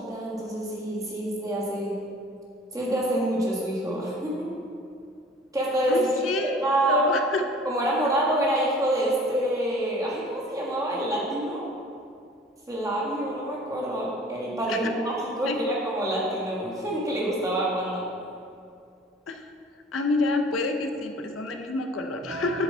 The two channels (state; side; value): normal; both; correlation 0.47